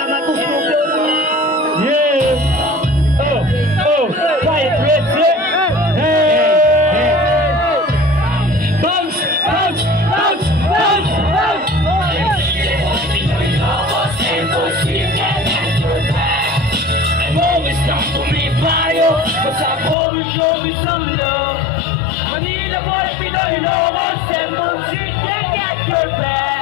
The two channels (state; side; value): drops out; right; at 20.0 s